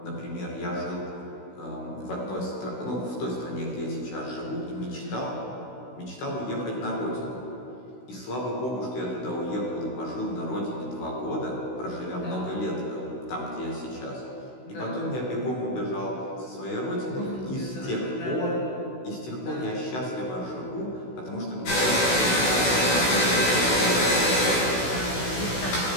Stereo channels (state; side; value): late; right; 16 ms